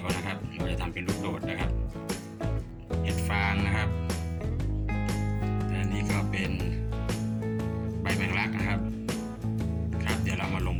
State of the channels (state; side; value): identical; both; correlation 1.00